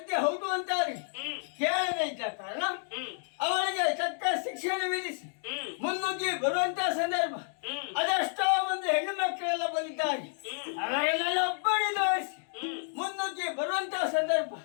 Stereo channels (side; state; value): right; silent; 57 dB below the other